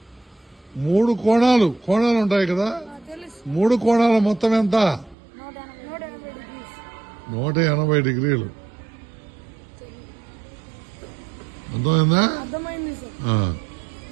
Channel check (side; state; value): left; drops out; at 5.2 s